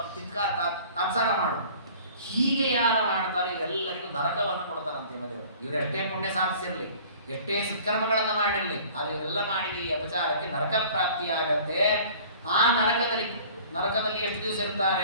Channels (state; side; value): inverted; both; correlation -0.48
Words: ತಾತ್ಸಾರ ಮಾಡು. ಹೀಗೆ ಯಾರು ಮಾಡ್ತಾರೆ ಇವರೆಲ್ಲರಿಗೂ ನರಕವನ್ನು ಕೊಡ್ತಾರಂತೆ ದೇವರು. ಇವರು ಎಷ್ಟೇ ಪುಣ್ಯ ಸಾಧಿಸಿರಲಿ, ಎಷ್ಟೇ ಸತ್ಕರ್ಮಗಳನ್ನು ಮಾಡಿರಲಿ, ಅದು ಇವರೆಲ್ಲ ಮಾಡಿದ ಈ ಅಪಚಾರಕ್ಕೆ ನರಕ ಪ್ರಾಪ್ತಿಯಾಗತ್ತೆ. ಆ ನರಕದಲ್ಲಿ ಎಷ್ಟು ದಿವಸ ಇರ್ತಾರೆ?